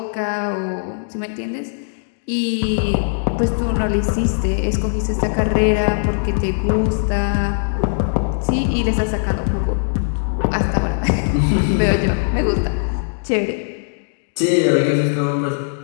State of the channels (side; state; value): right; silent; digital silence